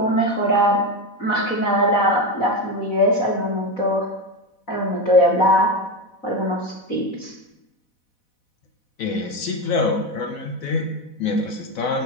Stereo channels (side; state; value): right; late; 4.1 ms